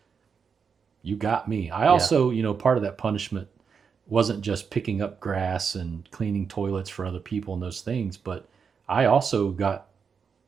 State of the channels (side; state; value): left; quieter; 6.2 dB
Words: You got me. I also, part of that punishment wasn't just picking up grass and cleaning toilets for other people and those things, but I also got